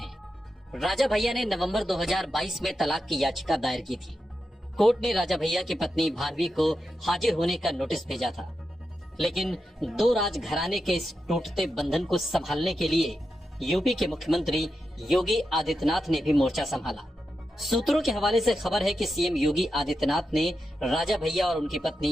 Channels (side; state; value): both; normal; correlation 0.88